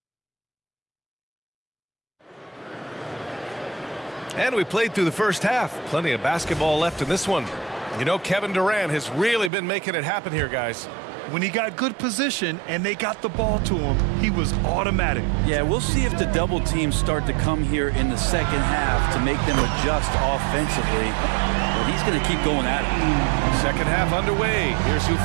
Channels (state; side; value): drops out; left; at 9.5 s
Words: And we played through the first half. Plenty of basketball left in this one. You know, Kevin Durant has really been making it happen here, guys. When he got good position and they got the ball to him, he was automatic. Yeah, we'll see if the double teams start to come here in the second half to make them adjust offensively. But he's going to keep going at it. Second half underway. Here's who